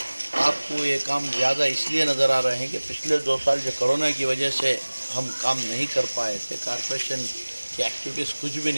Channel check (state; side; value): inverted; both; correlation -1.00